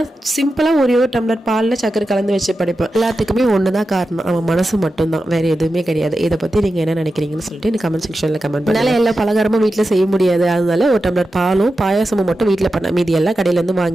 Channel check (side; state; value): both; normal; correlation 0.91